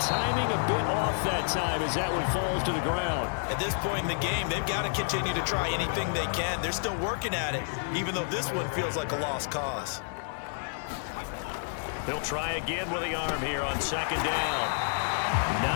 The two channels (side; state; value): right; silent; 58 dB below the other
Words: timing a bit off that time as that one falls to the ground. At this point in the game, they've got to continue to try anything they can. They're still working at it, even though this one feels like a lost cause. They'll try again with the arm here on 2nd down.